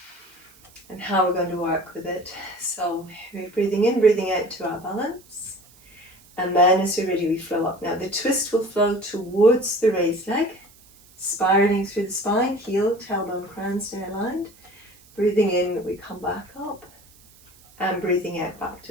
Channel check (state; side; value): noise; right; hiss, 26 dB below the sound